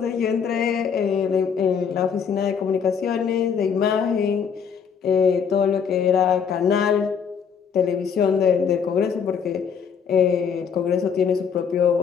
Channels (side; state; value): right; quieter; 6.9 dB